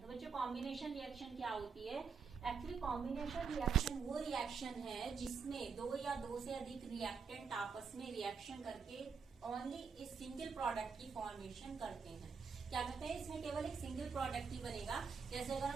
बच्चों, कॉम्बिनेशन रिएक्शन क्या होती है? एक्चुअली कॉम्बिनेशन रिएक्शन वो रिएक्शन है जिसमें दो या दो से अधिक रिएक्टेंट आपस में रिएक्शन करके ओनली इस सिंगल प्रोडक्ट की फॉर्मेशन करते हैं। क्या कहते हैं? इसमें केवल एक सिंगल प्रोडक्ट ही बनेगा। जैसे अगर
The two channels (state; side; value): quieter; left; 5.7 dB